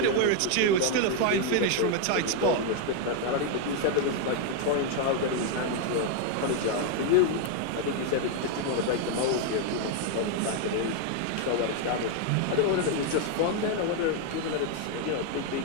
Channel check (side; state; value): both; different; correlation 0.01